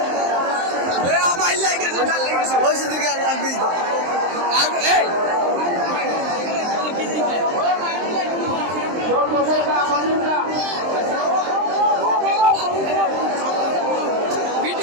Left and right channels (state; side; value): late; left; 23 ms